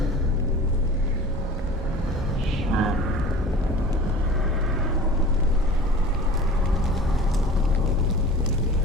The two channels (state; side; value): normal; both; correlation 0.40